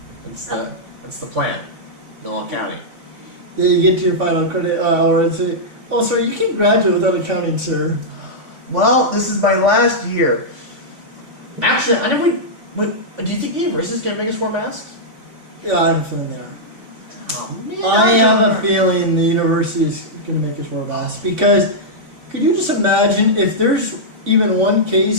That's the plan. No accounting. Yeah, you get to your final credit hour and say, oh, sir, you can't graduate without accounting, sir. Well, this is my last year. Actually, I never... do you think the university is going to make us wear masks? Yeah, I have a feeling there. Oh, man. I have a feeling the university is going to make us wear masks because could you just imagine if there's even one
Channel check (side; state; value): left; late; 3.5 ms